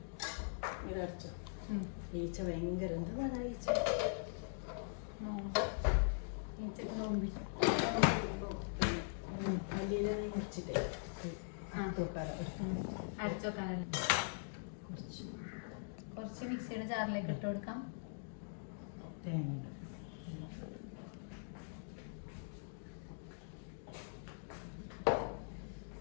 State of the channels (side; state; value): right; silent; digital silence